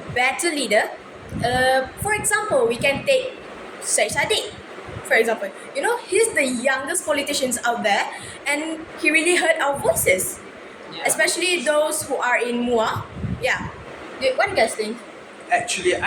leader. For example, we can take Syed Sadiq. For example, he's the youngest politicians out there, and he really heard our voices, Yeah. especially those who are in MUA. Yeah. What do you guys think? Actually,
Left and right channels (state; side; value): identical; both; correlation 1.00